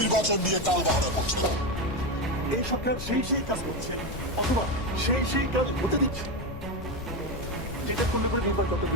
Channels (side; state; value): left; noise; rumble, 13 dB below the sound